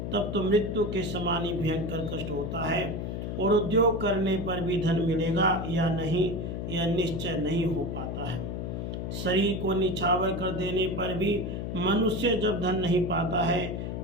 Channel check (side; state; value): left; noise; hum, 4 dB below the sound